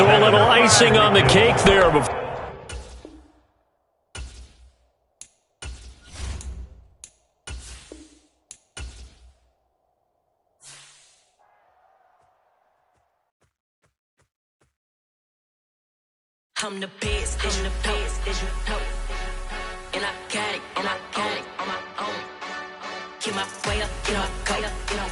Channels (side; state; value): both; identical; correlation 1.00